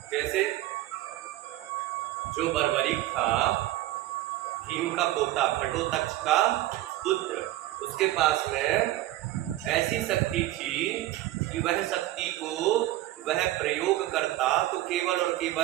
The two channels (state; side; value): quieter; left; 15.6 dB